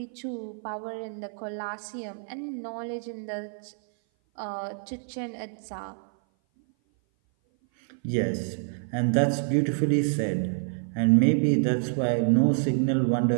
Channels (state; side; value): silent; left; 57 dB below the other